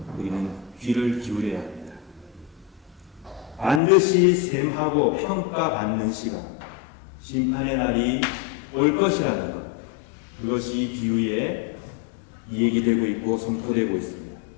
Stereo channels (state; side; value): drops out; right; at 3.8 s